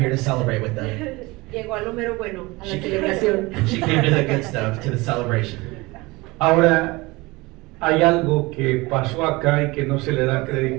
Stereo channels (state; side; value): quieter; left; 22.9 dB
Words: to celebrate with them. Llegó a lo mero bueno, a la She celebración. she came to the good stuff, to the celebration. Ahora, hay algo que pasó acá y que no se le da